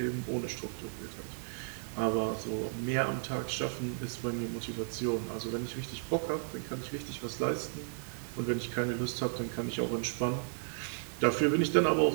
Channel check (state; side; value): silent; left; digital silence